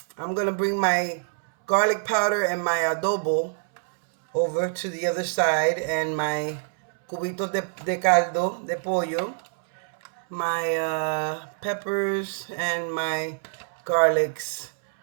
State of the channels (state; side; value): silent; left; 61 dB below the other